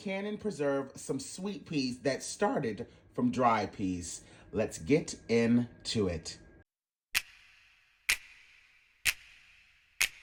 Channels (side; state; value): both; identical; correlation 1.00